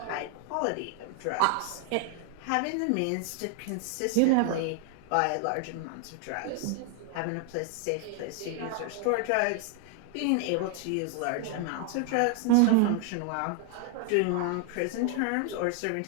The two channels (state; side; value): different; both; correlation 0.00